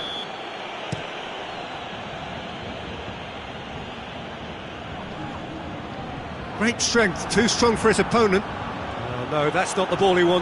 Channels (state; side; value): identical; both; correlation 1.00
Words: Great strength, too strong for his opponent. Oh no, that's not the ball he